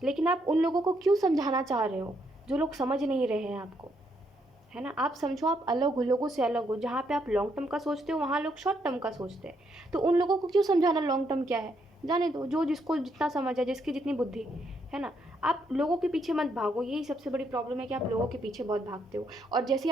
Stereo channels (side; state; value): both; normal; correlation 0.75